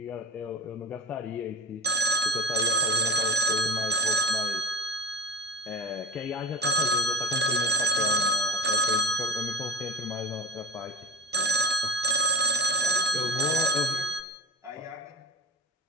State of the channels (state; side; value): normal; both; correlation 0.25